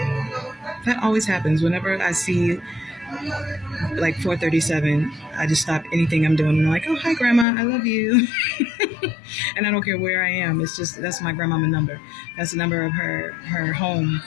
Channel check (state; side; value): drops out; right; at 7.5 s